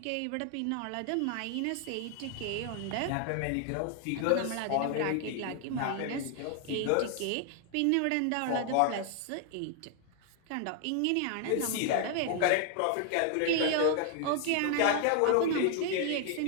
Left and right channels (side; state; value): both; different; correlation 0.00